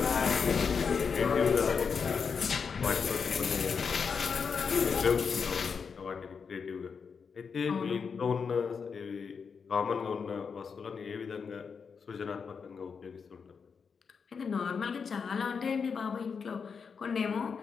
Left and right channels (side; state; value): right; quieter; 5.9 dB